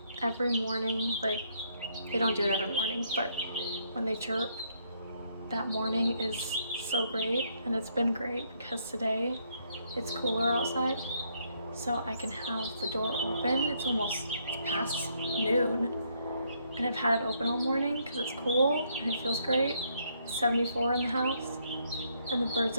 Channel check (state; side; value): inverted; both; correlation -0.72